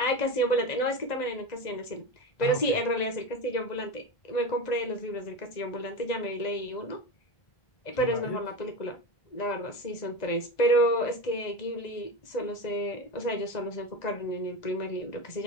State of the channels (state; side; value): late; right; 1.9 ms